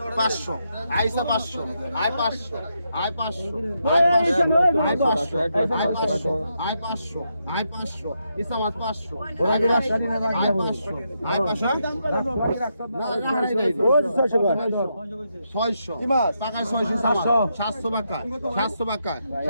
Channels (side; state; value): both; inverted; correlation -0.82